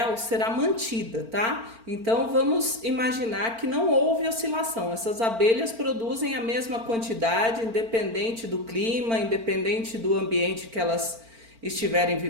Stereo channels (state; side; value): late; left; 4.4 ms